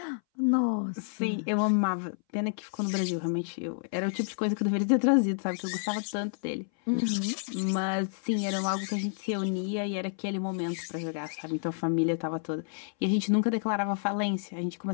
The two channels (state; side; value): silent; right; 58 dB below the other